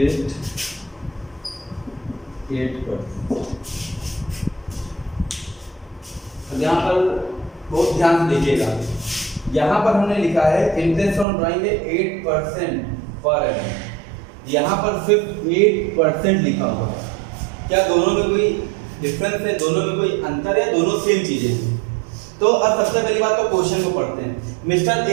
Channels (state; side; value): drops out; left; at 11.2 s